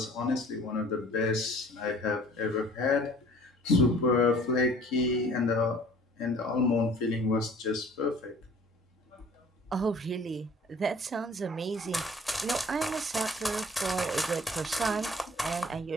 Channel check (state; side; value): normal; both; correlation 0.51